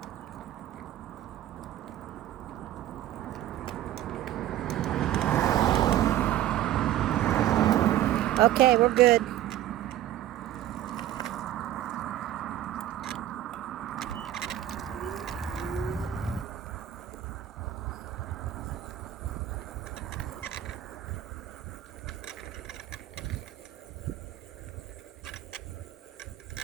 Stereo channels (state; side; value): quieter; left; 12.7 dB